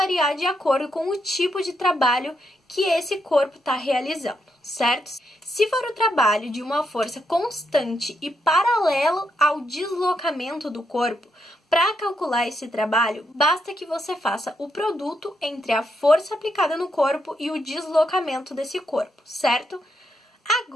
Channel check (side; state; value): both; normal; correlation 0.80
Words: de acordo com o tipo de trabalho que esse corpo está realizando, certo? Se for o trabalho de uma força constante e paralelo ao deslocamento do corpo, para calcular esse trabalho, basta que você faça o produto entre a força aplicada no corpo e o deslocamento desse corpo, certo?